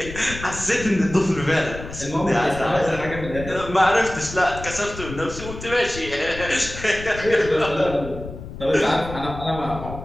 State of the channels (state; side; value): noise; left; rumble, 11 dB below the sound